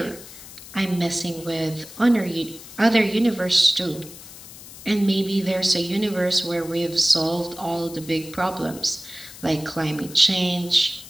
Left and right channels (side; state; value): left; noise; hiss, 16 dB below the sound